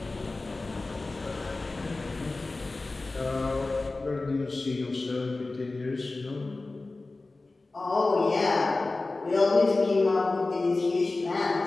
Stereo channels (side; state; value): right; quieter; 3.3 dB